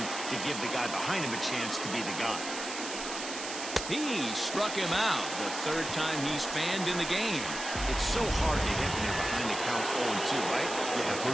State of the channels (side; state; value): right; noise; hiss, 7 dB below the sound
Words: to give the guy behind him a chance to be the guy. He struck him out, the third time he's fanned in the game. It's so hard to hit when you're behind the count 0-2, right? You have to